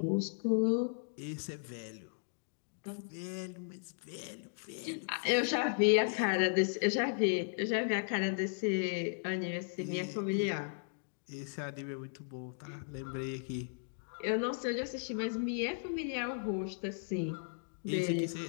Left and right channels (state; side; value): silent; right; digital silence